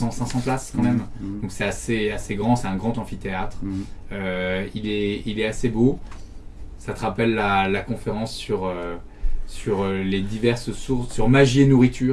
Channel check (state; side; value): identical; both; correlation 1.00